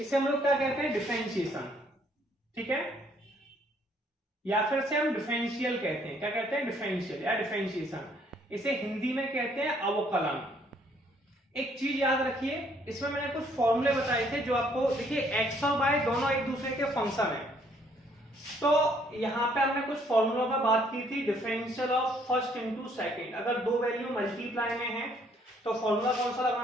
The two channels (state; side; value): normal; both; correlation 0.65